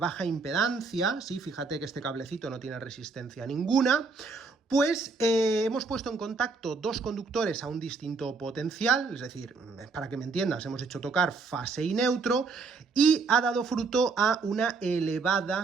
impedancia, sí, fíjate que este cablecito no tiene resistencia ninguna, pues hemos puesto en contacto dos conductores a un distinto potencial, es decir, para que me entiendas, hemos hecho tocar fase y neutro, y ha dado fruto a una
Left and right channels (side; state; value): left; quieter; 4.4 dB